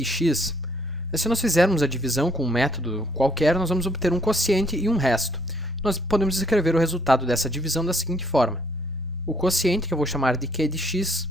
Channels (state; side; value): normal; both; correlation 0.66